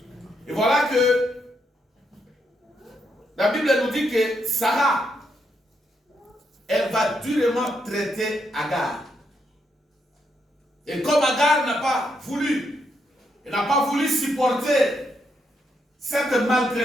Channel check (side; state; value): both; normal; correlation 0.79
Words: Et voilà que la Bible nous dit que Sarah, elle va durement traiter Agar. Et comme Agar n'a pas voulu, elle n'a pas voulu supporter cette